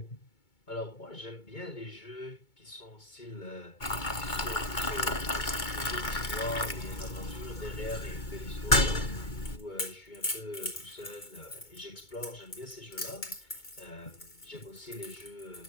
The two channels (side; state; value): right; late; 2.2 ms